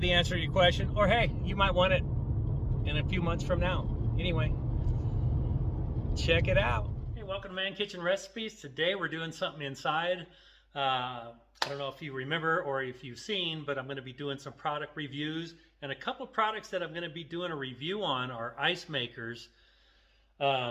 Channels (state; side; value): identical; both; correlation 1.00